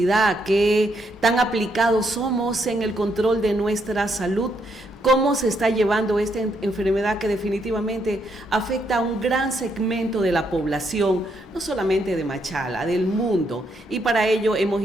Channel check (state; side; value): normal; both; correlation 0.76